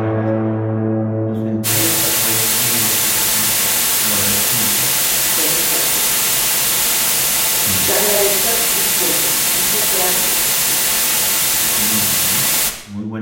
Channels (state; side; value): identical; both; correlation 1.00